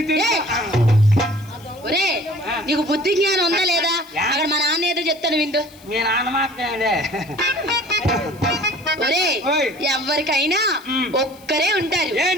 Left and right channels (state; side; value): noise; left; hiss, 25 dB below the sound